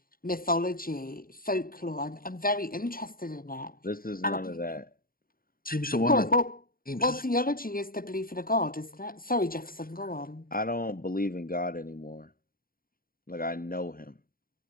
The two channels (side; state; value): right; late; 0.42 ms